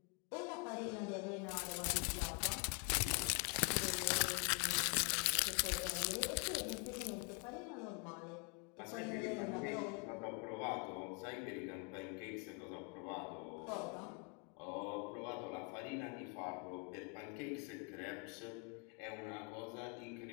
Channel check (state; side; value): quieter; right; 34.8 dB